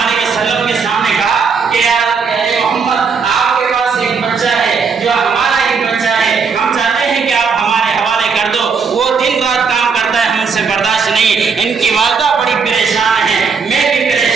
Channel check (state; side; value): quieter; left; 5.5 dB